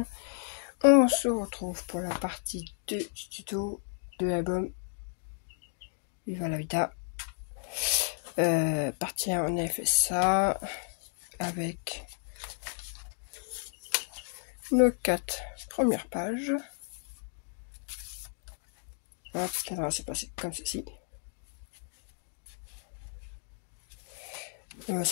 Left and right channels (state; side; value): silent; right; 56 dB below the other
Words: On se retrouve pour la partie 2 du tuto de l'album Viva la Vida. Partie 1, on a fait ça avec nos 4 premières pages. Alors, ce qui s'est passé comme ceci.